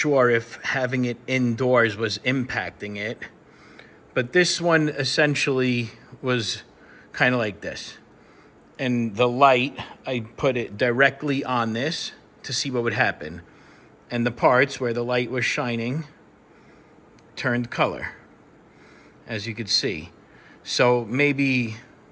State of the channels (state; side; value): identical; both; correlation 1.00